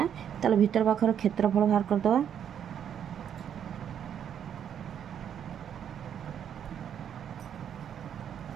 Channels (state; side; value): quieter; left; 8.9 dB